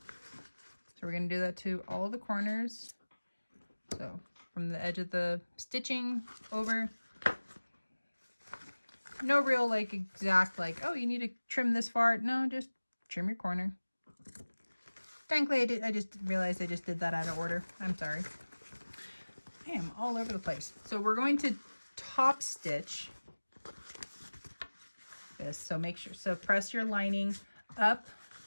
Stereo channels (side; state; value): both; inverted; correlation -1.00